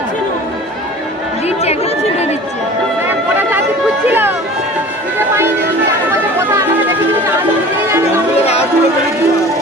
দিচ্ছে একটা ছুটে দিচ্ছে ওরা জাতি খুঁজছিল পূজা পাইনি কথা আমরা দেখি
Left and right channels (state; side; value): normal; both; correlation 0.42